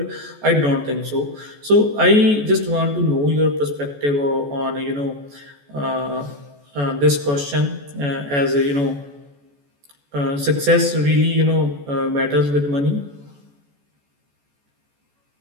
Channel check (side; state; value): left; late; 14 ms